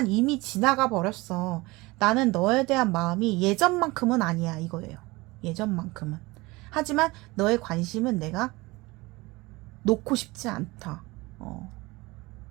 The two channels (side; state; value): left; quieter; 22.5 dB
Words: 이미 지나가 버렸어. 나는 너에 대한 마음이 예전만큼은 아니야, 이거예요. 예전만큼은. 하지만 너의 관심은 내가 놓고 싶지 않다.